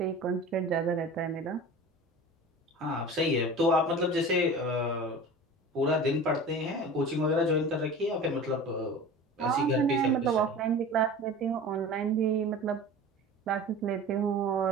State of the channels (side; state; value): both; normal; correlation 0.37